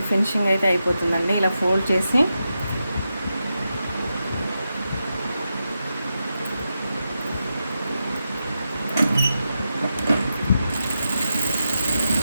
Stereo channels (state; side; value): inverted; both; correlation -0.88